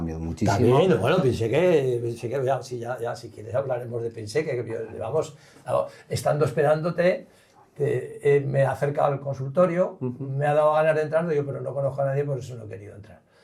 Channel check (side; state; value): both; identical; correlation 1.00